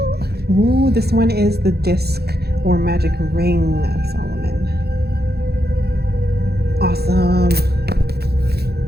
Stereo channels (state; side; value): late; left; 0.47 ms